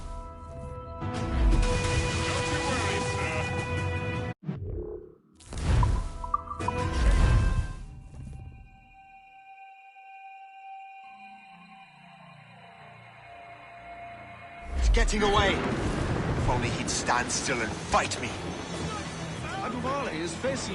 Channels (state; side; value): identical; both; correlation 1.00